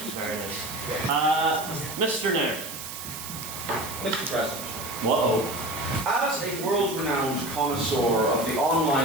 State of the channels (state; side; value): noise; right; hiss, 9 dB below the sound